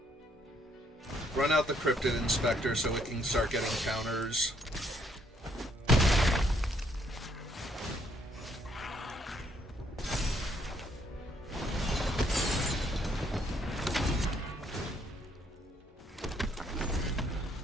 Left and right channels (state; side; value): normal; both; correlation 0.69